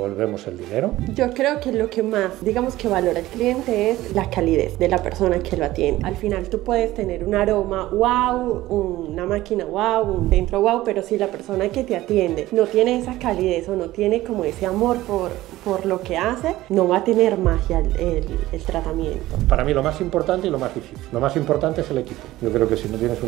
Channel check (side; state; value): left; quieter; 16.4 dB